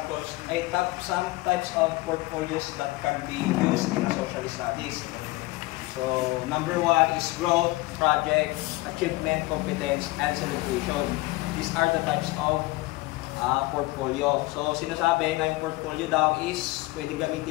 Some types of portfolios that can be used in a social studies. So number one is growth, project, achievement, competence, and celebration. These are the types of portfolio. So sinasabi na yung portfolio daw is pwede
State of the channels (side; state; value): right; quieter; 20.8 dB